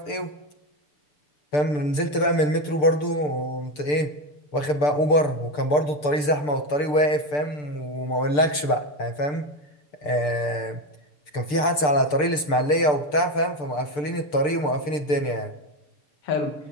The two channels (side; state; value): right; late; 6.8 ms